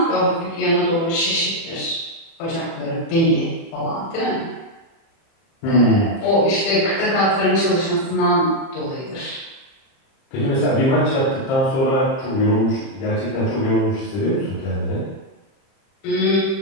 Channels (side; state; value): right; late; 30 ms